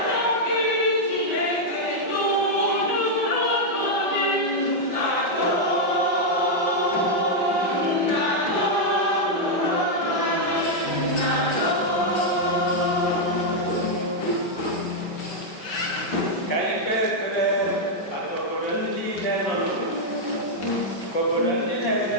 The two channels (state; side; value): late; right; 5.6 ms